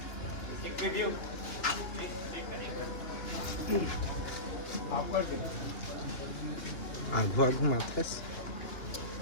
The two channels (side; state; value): right; late; 2.9 ms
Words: आगू आगू माथस